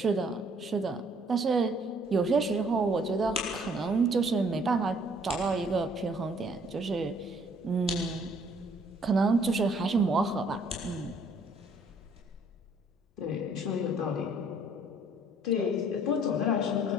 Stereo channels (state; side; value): normal; both; correlation 0.61